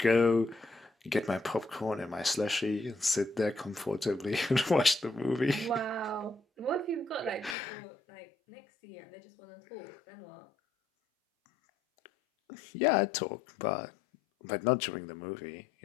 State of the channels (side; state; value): right; drops out; at 7.6 s